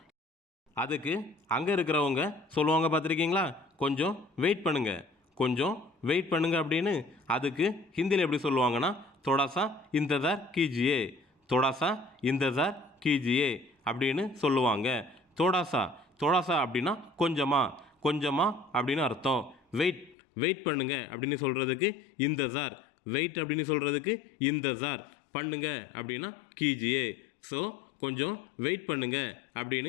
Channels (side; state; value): right; drops out; at 20.2 s